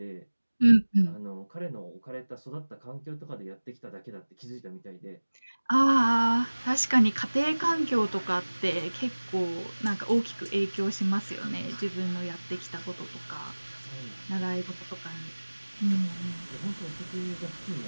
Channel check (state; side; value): inverted; both; correlation -1.00